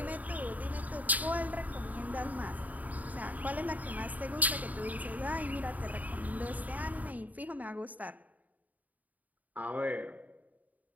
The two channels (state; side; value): late; left; 0.076 ms